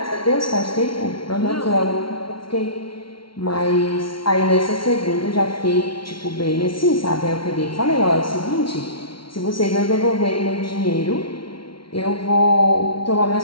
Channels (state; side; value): late; right; 0.74 ms